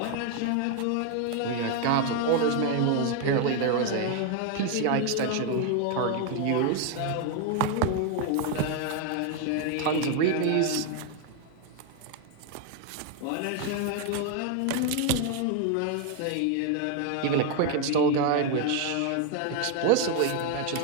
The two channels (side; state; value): both; different; correlation 0.01